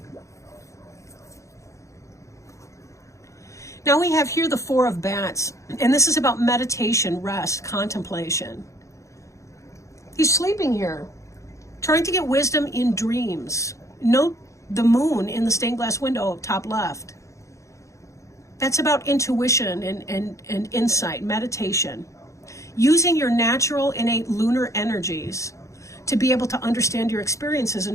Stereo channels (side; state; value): right; late; 0.15 ms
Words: Now we have here the Four of Bats, and this is about meditation, rest, contemplation. He's sleeping here. Trying to get wisdom in dreams. Note the moon in the stained glass window top left. That's about intuition and insight, meditation. Using your natural innate lunar energies to be able to understand your experiences